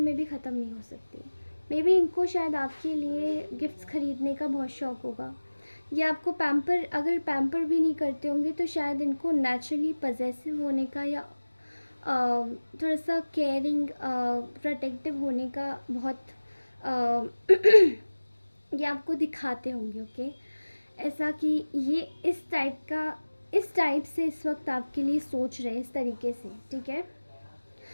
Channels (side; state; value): both; inverted; correlation -1.00